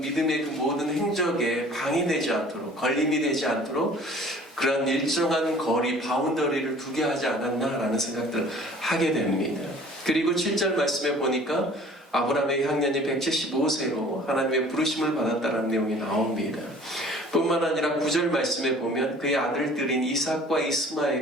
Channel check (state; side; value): normal; both; correlation 0.50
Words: 믿음의 그 모든 행적에 방해되지 않도록, 걸림이 되지 않도록 그런 일정한 거리, 바운더리를 두게 하지 않았나라는 생각들을 하게 됩니다. 그리고 7절 말씀에 보니까 아브라함의 향년이 175세로 하나님의 부르심을 받았다는 내용이 나옵니다. 뿐만 아니라 9절 말씀에 보면 그의 아들들인 이삭과